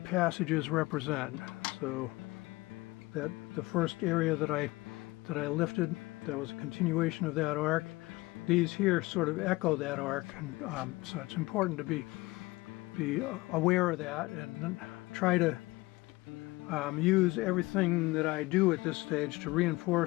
passages represent. So that the first area that I lifted, that was a continuation of that arc. These here sort of echo that arc, and so it's important to be aware of that and try to use everything that I do at this stage to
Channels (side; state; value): right; quieter; 21.4 dB